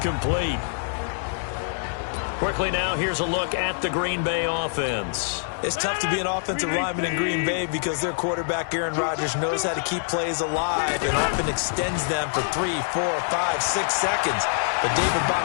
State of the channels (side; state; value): right; silent; 62 dB below the other